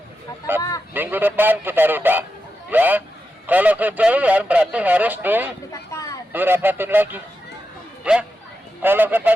Nah, minggu depan kita rubah, ya. Kalau kejauhan berarti harus dirapatin lagi, ya. Kalau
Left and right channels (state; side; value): normal; both; correlation 0.88